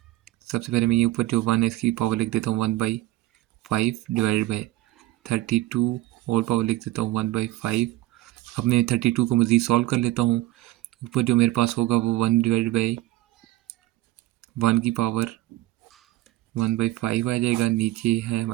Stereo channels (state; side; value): quieter; left; 17.0 dB